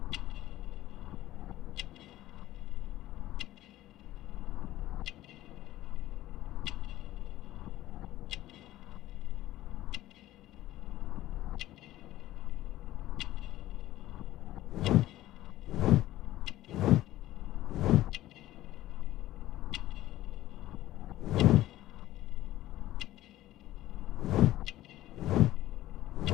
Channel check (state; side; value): quieter; right; 15.0 dB